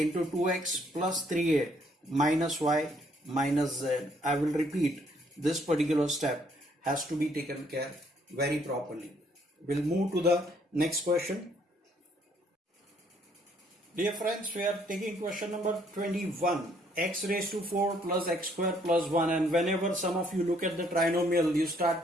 2x plus 3a minus y minus z. I will repeat, this particular step has to be taken care very properly. We'll move to the next question. Dear friends, we are taking question number 21. X raised to 4 plus x square plus 1. And whenever some of you look at the trinomial, you start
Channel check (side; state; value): both; normal; correlation 0.66